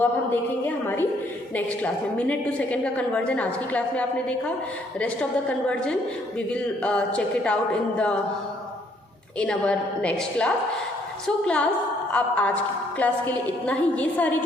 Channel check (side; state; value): both; normal; correlation 0.67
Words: अब हम देखेंगे हमारी नेक्स्ट क्लास में. मिनट टू सेकंड का कन्वर्जन आज की क्लास में आपने देखा. Rest of the conversion we will check it out in our next class. So class, आप आज की क्लास के लिए इतना ही. ये सारी